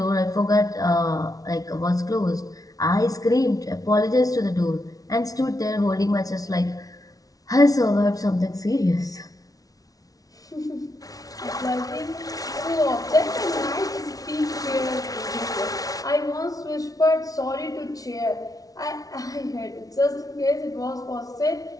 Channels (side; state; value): right; late; 0.18 ms